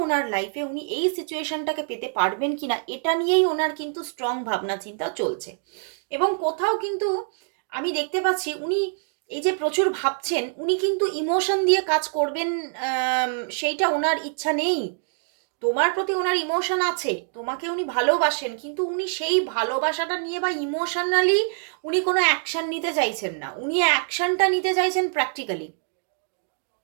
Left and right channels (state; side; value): silent; left; 62 dB below the other